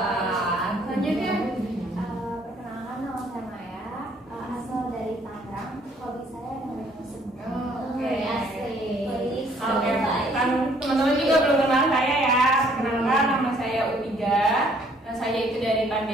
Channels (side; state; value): both; normal; correlation 0.62